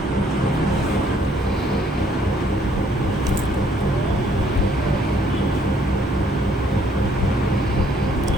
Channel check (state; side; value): normal; both; correlation 0.65